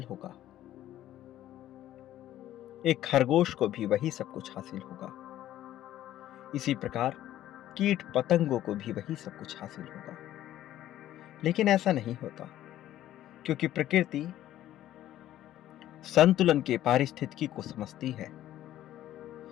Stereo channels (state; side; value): quieter; right; 13.1 dB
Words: होगा, एक खरगोश को भी वही सब कुछ हासिल होगा। इसी प्रकार कीट पतंगों को भी वही सब कुछ हासिल होगा। लेकिन ऐसा नहीं होता, क्योंकि प्रकृति संतुलन के पारिस्थितिकी को समझती है।